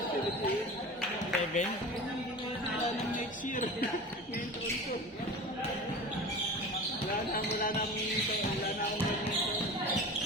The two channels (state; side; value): normal; both; correlation 0.34